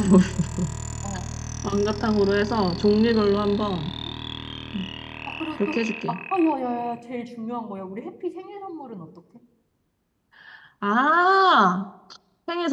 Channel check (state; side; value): identical; both; correlation 1.00